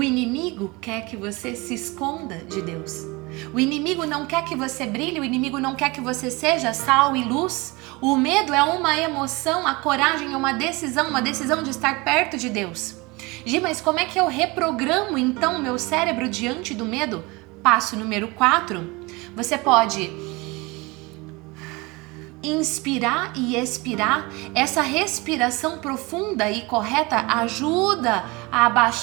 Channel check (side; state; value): left; quieter; 24.7 dB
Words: inimigo quer que você se esconda de Deus. O inimigo não quer que você brilhe, o inimigo não quer que você seja sal e luz. O medo é uma emoção, a coragem é uma decisão de estar perto de Deus. Gi, mas como é que eu reprogramo então o meu cérebro diante do medo? Passo número 4, você pode inspirar e expirar. Essa respiração profunda e correta ajuda a